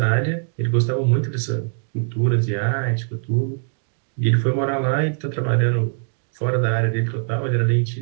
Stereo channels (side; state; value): left; silent; digital silence